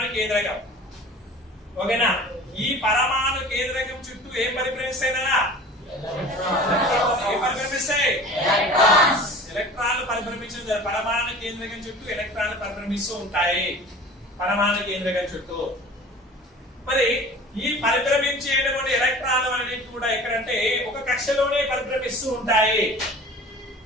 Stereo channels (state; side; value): normal; both; correlation 0.41